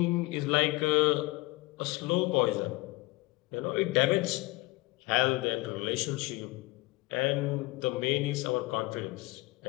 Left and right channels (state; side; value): quieter; right; 22.6 dB